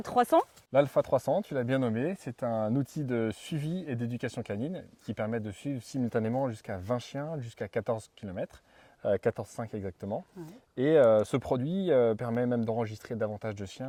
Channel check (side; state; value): both; identical; correlation 1.00